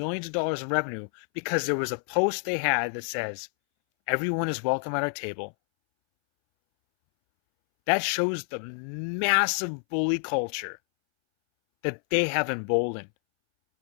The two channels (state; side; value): silent; right; 60 dB below the other